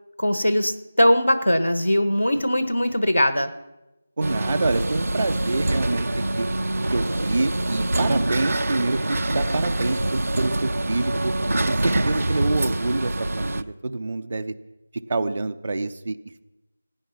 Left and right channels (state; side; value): inverted; both; correlation -0.95